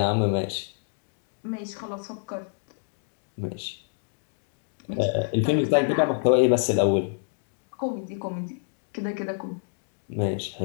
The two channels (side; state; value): right; silent; digital silence